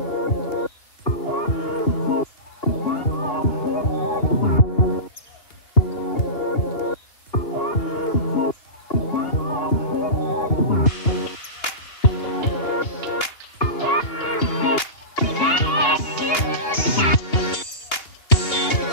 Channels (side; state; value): right; late; 2.8 ms